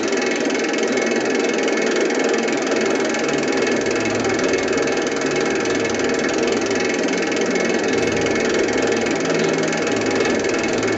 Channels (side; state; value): both; identical; correlation 1.00